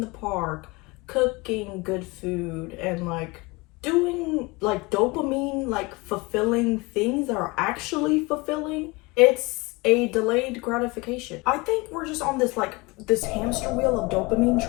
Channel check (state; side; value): quieter; right; 25.0 dB